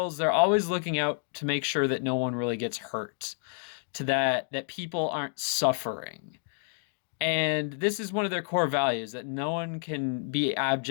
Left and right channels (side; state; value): right; silent; 55 dB below the other